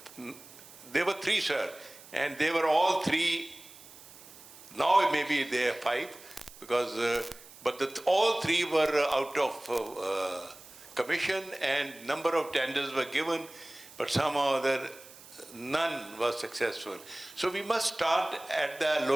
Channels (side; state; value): right; noise; hiss, 20 dB below the sound